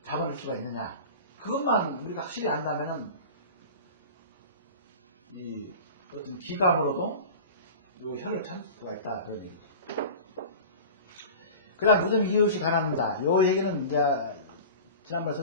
잡아낼 수가 있느냐. 그것만 우리가 확실히 안다면은, 이 어떤 기감으로도 요 혈을 찾을 수가 있다. 그런 얘기죠. 그 다음 무슨 이유 없이 가난한다. 요 얘기는 이제 지난번에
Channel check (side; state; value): both; inverted; correlation -0.35